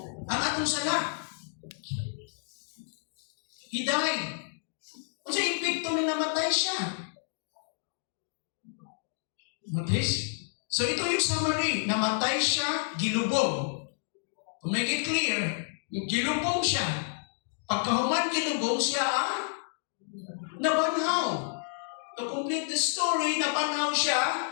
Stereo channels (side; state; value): right; silent; digital silence